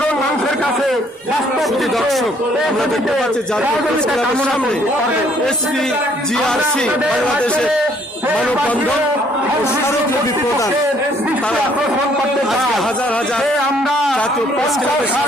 মানুষের কাছে বাস্তব দর্শক আমরা দেখতে পাচ্ছি SPGRC বাংলাদেশের মানববন্ধন ও স্মারকলিপি প্রদান তারা আজকে হাজার হাজার জাতীয় প্রেস ক্লাবের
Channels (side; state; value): both; normal; correlation 0.64